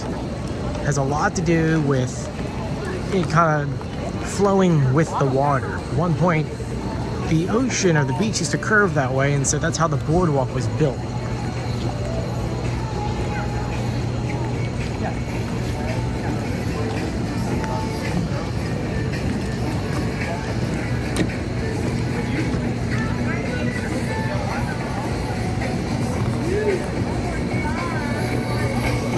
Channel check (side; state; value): both; identical; correlation 1.00